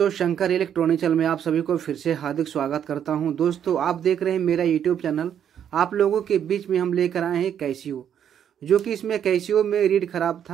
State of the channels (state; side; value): quieter; left; 9.1 dB